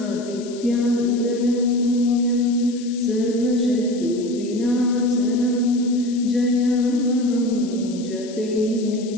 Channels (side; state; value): left; noise; hiss, 18 dB below the sound